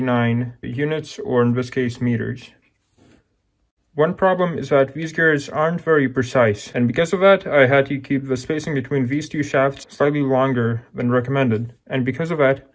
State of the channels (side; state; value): both; identical; correlation 1.00